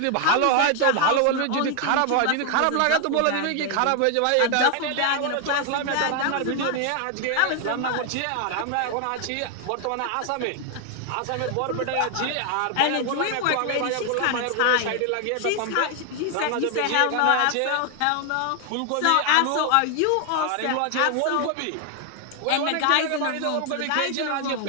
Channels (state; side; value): different; both; correlation 0.00